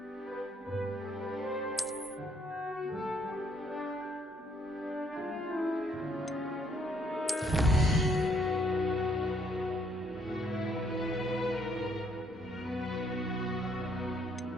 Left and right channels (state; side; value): normal; both; correlation 0.68